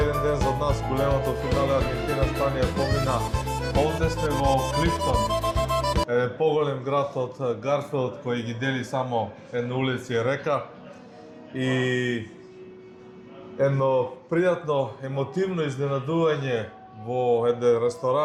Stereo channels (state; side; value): identical; both; correlation 1.00